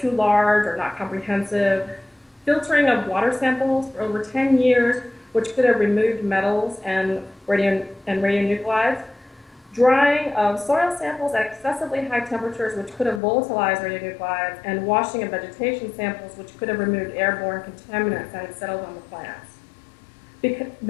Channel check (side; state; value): right; drops out; at 13.2 s